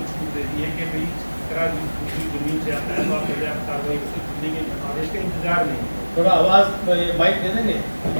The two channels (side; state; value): both; inverted; correlation -1.00